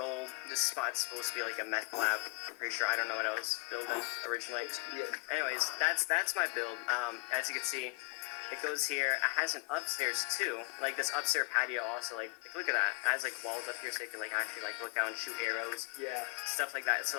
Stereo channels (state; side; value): quieter; right; 25.0 dB